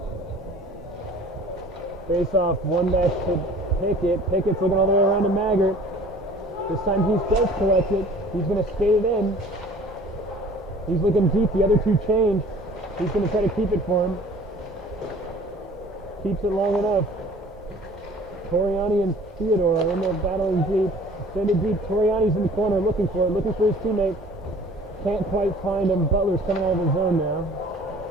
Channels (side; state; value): both; normal; correlation 0.49